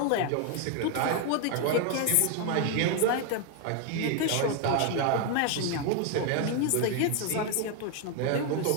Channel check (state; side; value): different; both; correlation 0.01